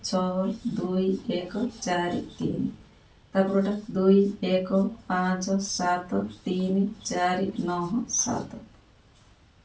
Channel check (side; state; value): both; identical; correlation 1.00